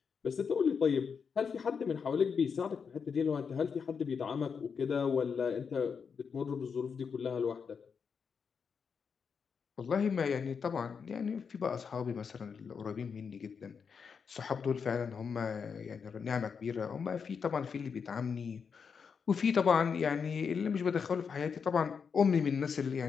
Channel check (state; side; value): quieter; right; 6.1 dB